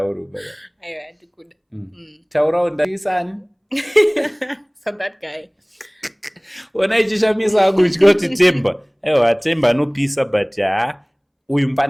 baba. Aiwa ndikuda. Taurawo ndisani. So that guy. Ona ichishamisa akutya kuti Themba. Aiwa Themba anopisa but uyu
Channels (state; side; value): identical; both; correlation 1.00